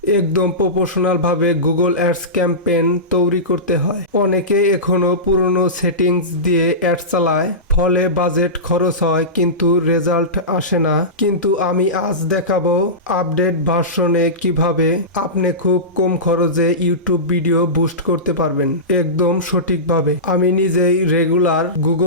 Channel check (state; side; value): normal; both; correlation -0.19